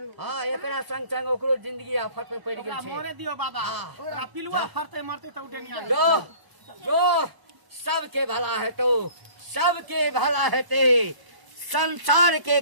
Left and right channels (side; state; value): left; late; 1.0 ms